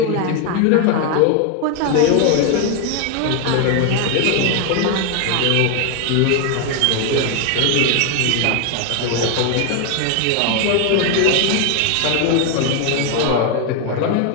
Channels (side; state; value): both; different; correlation 0.01